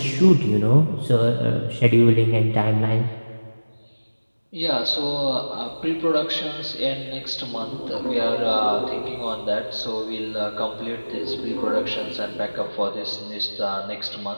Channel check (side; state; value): both; inverted; correlation -1.00